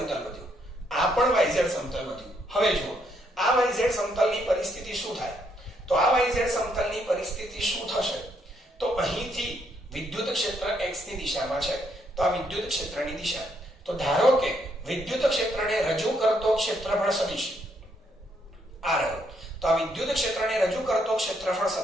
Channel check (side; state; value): both; normal; correlation 0.73